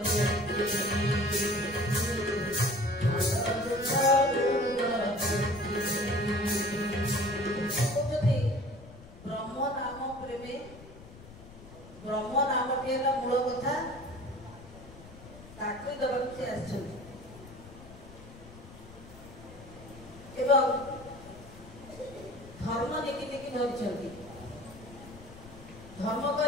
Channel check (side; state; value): left; noise; rumble, 18 dB below the sound